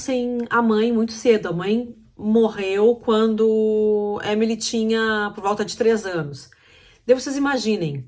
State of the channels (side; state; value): both; identical; correlation 1.00